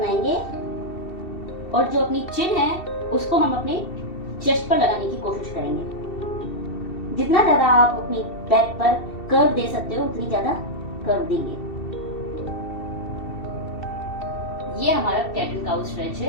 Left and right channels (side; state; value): right; late; 2.7 ms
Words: और जो अपनी चिन है उसको हम अपने चेस्ट पर लगाने की कोशिश करेंगे। जितना ज्यादा आप अपनी बैक पर कर्व दे सकते हो उतनी ज्यादा कर्व देंगे। ये हमारा कैट एंड काउ स्ट्रेच